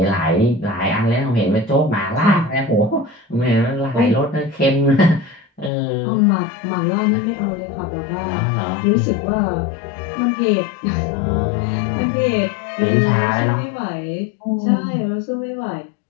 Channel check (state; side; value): drops out; right; at 5.7 s